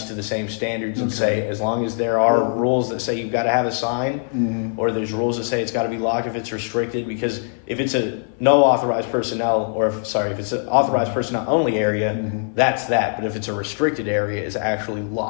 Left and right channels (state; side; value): silent; right; 55 dB below the other